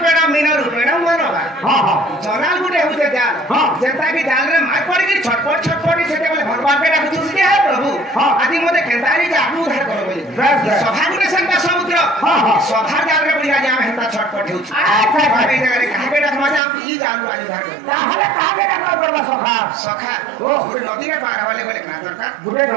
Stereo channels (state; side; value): drops out; left; at 16.6 s